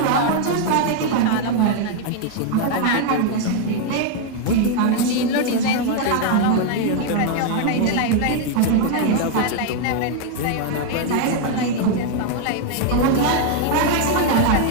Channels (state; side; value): different; both; correlation 0.00